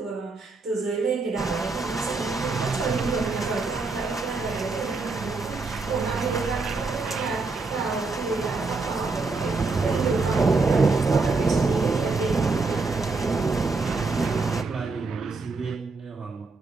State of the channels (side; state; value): left; quieter; 3.9 dB